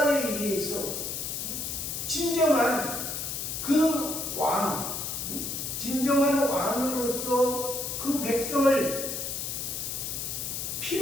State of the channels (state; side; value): noise; left; hiss, 4 dB below the sound